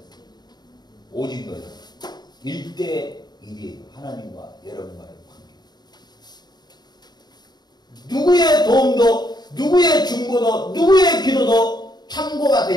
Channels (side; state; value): right; late; 0.20 ms